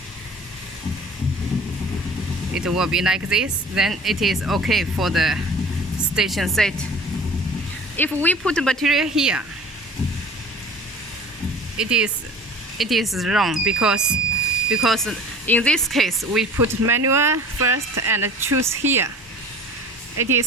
It will be like this, then it is okay for the station set. If we put material here, it is wrong because in this case we put manual first and choose here. It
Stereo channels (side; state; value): both; normal; correlation 0.43